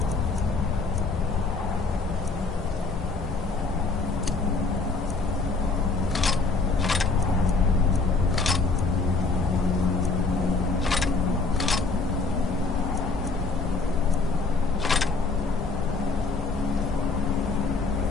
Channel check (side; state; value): right; quieter; 3.9 dB